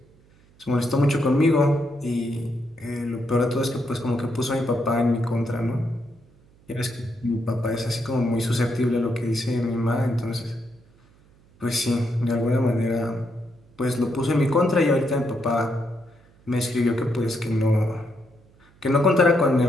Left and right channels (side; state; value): right; noise; hum, 29 dB below the sound